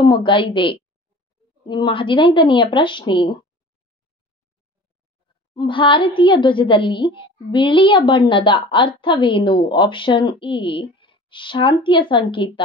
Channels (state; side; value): normal; both; correlation 0.42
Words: ಇದೆ. ನಿಮ್ಮ 15ನೆಯ ಪ್ರಶ್ನೆ. ಭಾರತೀಯ ಧ್ವಜದಲ್ಲಿ ಬಿಳಿಯ ಬಣ್ಣದ ಅರ್ಥವೇನು? ಆಪ್ಷನ್ ಎ ಶಾಂತಿಯ ಸಂಕೇತ,